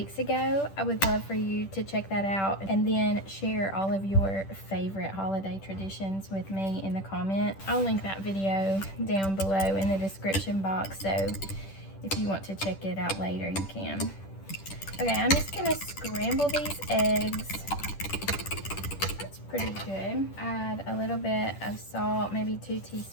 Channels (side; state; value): right; late; 10 ms